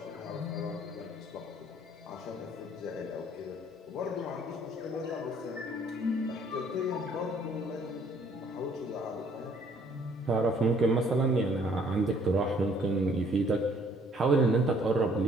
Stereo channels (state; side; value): normal; both; correlation 0.61